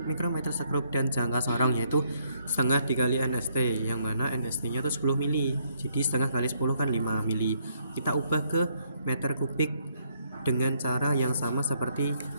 mikrometer sekrup, dan jangka sorong, yaitu setengah dikali NST, yang mana NST-nya itu 10 mili. Jadi setengah kali 10 kan 5 mili. Kita ubah ke meter kubik dengan cara yang sama seperti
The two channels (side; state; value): both; inverted; correlation -0.72